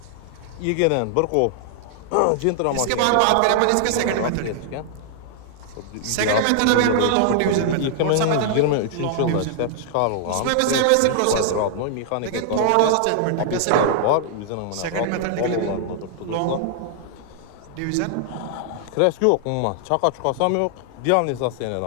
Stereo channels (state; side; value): different; both; correlation -0.01